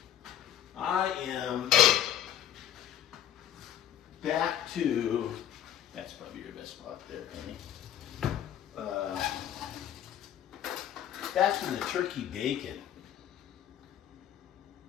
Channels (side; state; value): right; quieter; 10.9 dB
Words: am back to, that's probably your best spot there, Penny. Back to the turkey bacon.